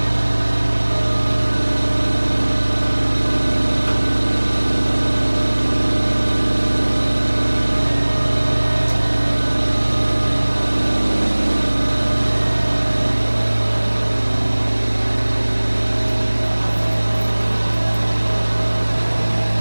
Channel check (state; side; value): inverted; both; correlation -1.00